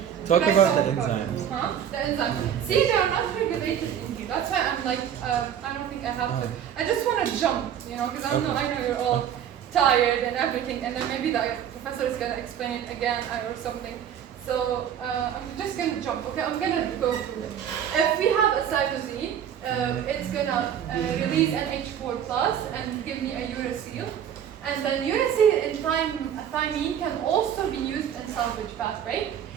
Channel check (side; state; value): left; quieter; 9.3 dB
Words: Talk Should I about the talk enzymes. Huh? The enzymes. See, they are not regulated in here. That's why I'm like, I don't think I have to. I just want to jump, because I know you're all tired and everything, and then maybe the professor is going to explain it again or something. So I'm just going to jump. Okay, I'm going to go through it. If we have a cytosine, it's going to release NH4 plus and give me a uracil. And then uracil and thymine can also be used in salvage pathway.